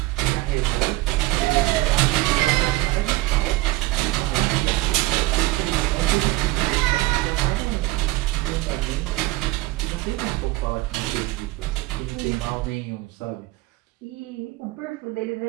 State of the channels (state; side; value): quieter; left; 19.2 dB